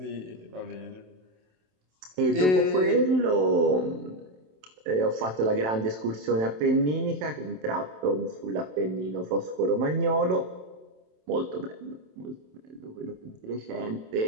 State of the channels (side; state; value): left; late; 27 ms